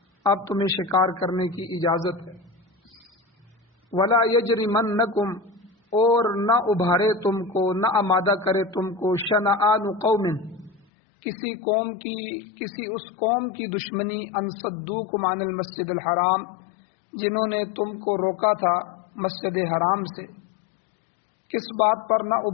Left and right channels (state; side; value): drops out; right; at 10.9 s